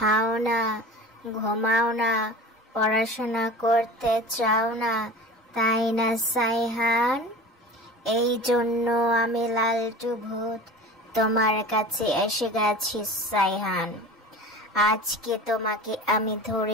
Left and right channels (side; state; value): both; normal; correlation 0.37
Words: না, ঘুমাও না, পড়াশোনা করতে চাও না, তাই না সাইহান? এই জন্য আমি লালটু ভূত তোমার কাছে এসে গেছি সাইহান। আজকে তোমাকে আমি